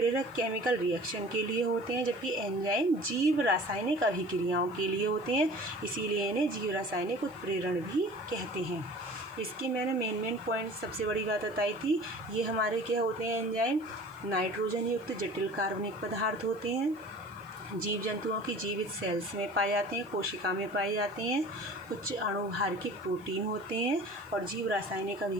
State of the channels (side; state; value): right; noise; hiss, 29 dB below the sound